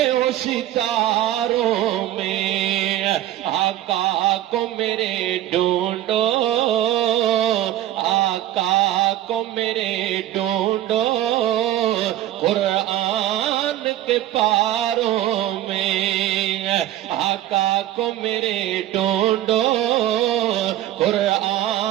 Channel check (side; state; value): left; quieter; 13.2 dB